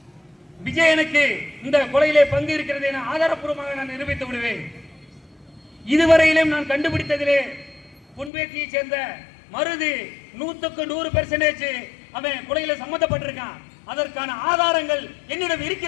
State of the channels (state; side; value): drops out; right; at 8.3 s